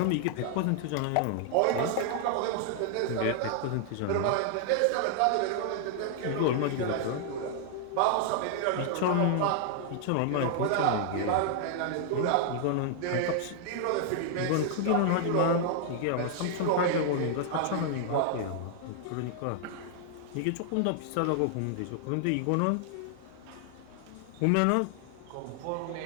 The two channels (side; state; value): both; different; correlation 0.00